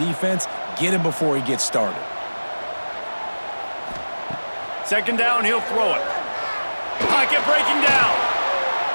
Get him before he gets started. 2nd down, he'll throw it. Pocket breaking down.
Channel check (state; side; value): inverted; both; correlation -1.00